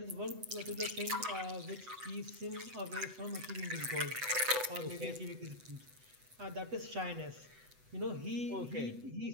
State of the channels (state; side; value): late; left; 8.0 ms